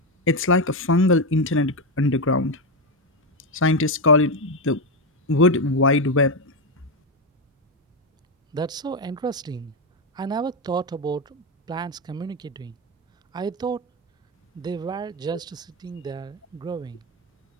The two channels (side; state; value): both; normal; correlation 0.09